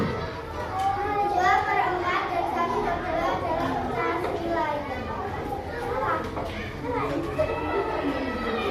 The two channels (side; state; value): both; identical; correlation 1.00